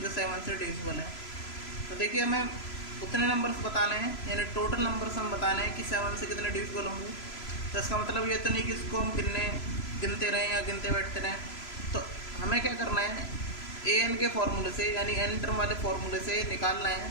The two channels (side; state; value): right; late; 3.0 ms